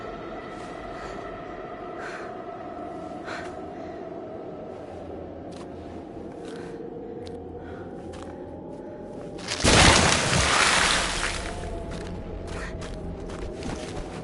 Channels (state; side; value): identical; both; correlation 1.00